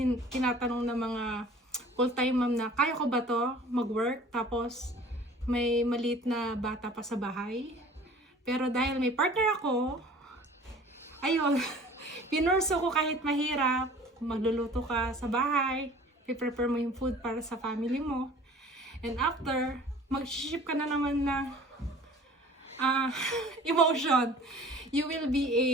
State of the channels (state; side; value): normal; both; correlation 0.47